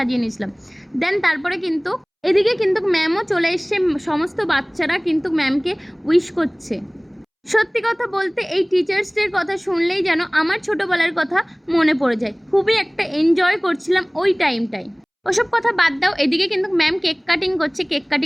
নিয়েছিলাম। দেন তারপরে কিন্তু এদিকে কিন্তু ম্যামও চলে এসছে, সমস্ত বাচ্চারা কিন্তু ম্যামকে উইশ করছে। সত্যি কথা বলতে এই টিচার্স ডের কথা শুনলেই যেন আমার ছোটোবেলার কথা মনে পড়ে যায়। খুবই একটা এনজয় করছিলাম ওই টাইমটায়। ওসব কথা বাদ দাও, এদিকে কিন্তু ম্যাম কেক কাটিং করছে। কেক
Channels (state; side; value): identical; both; correlation 1.00